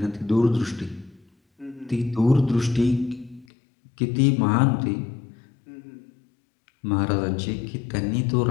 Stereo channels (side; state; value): right; drops out; at 3.5 s